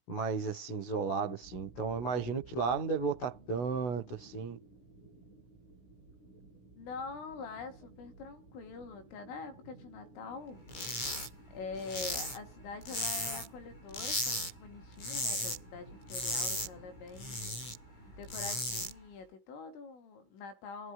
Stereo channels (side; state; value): right; late; 16 ms